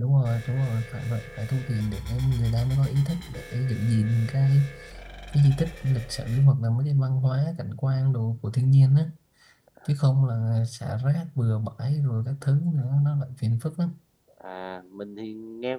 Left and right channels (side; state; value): both; identical; correlation 1.00